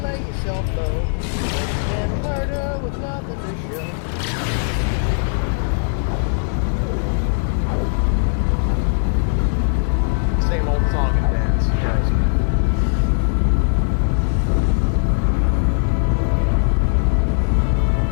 lay yourself low, and murder with nothing to show. Same old song and dance. Yes.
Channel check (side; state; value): right; silent; 58 dB below the other